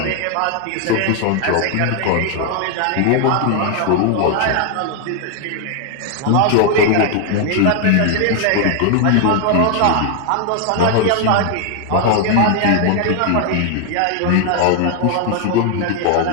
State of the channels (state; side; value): different; both; correlation 0.00